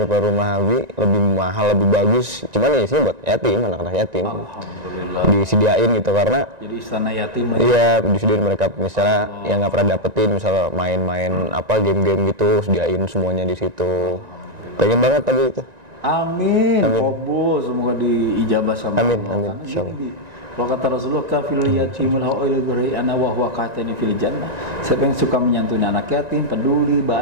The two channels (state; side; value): late; left; 1.9 ms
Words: rumah Abi, lebih mahal, lebih bagus. Cuman ya isinya buat yatim, anak-anak yatim. Disediain gitu, karena jadi istana yatim. Iya, disediain mereka misalnya yang nggak pernah dapetin, misalnya main-main apa game-game gitu, sediain semuanya di situ. Pengen banget tapi itu. Amin. Oh, semoga diijabah sama Amin, Allah. amin, insyaallah. Kalau kata Rasulullah, kafil yatimul awil ana wa huwa qatani fil jannah. Siapa yang suka menyantuni anak yatim, peduli